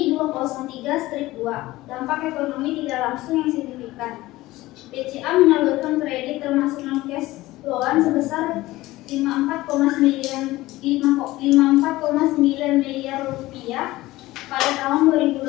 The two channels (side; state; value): right; quieter; 18.0 dB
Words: 203-2 dampak ekonomi tidak langsung yang signifikan. BCA menyalurkan kredit termasuk non cash loan sebesar 54,9 miliar rupiah pada tahun 2021.